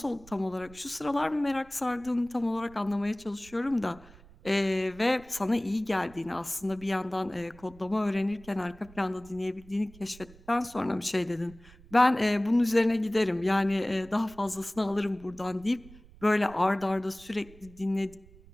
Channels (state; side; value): noise; right; rumble, 23 dB below the sound